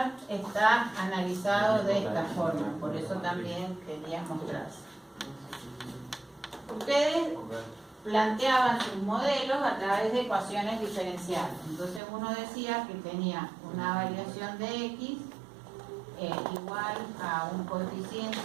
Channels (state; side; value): drops out; left; at 12.0 s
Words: está analizado de esta forma, por eso también quería mostrarse. Ustedes planteaban sus modelos a través de ecuaciones diferenciales. Entonces uno decía que tenía una variación de x igual a un coeficiente